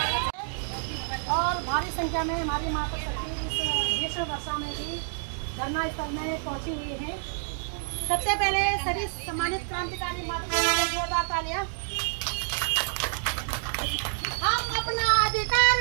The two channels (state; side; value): silent; left; digital silence